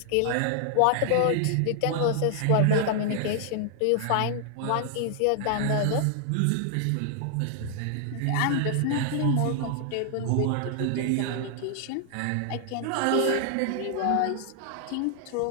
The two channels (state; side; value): different; both; correlation 0.00